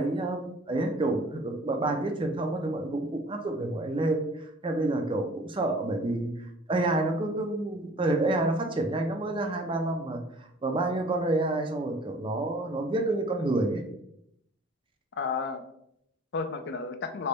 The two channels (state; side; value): normal; both; correlation 0.50